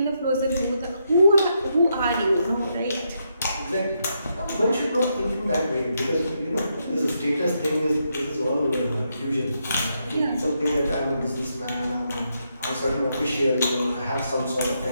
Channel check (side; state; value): both; inverted; correlation -0.80